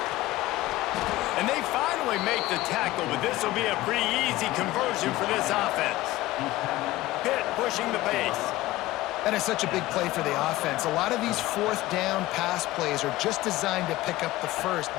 And they finally make the tackle, but this will be a pretty easy conversion for this offense. Pitt pushing the pace. That is such a big play for the offense. A lot of these fourth down pass plays are just designed to pick up the first.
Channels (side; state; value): right; quieter; 17.3 dB